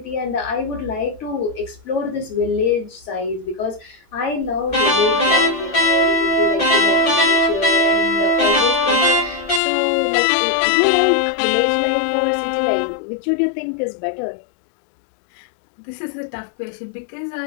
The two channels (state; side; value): drops out; right; at 9.6 s